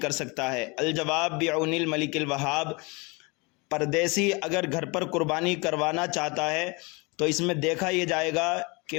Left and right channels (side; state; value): right; quieter; 27.8 dB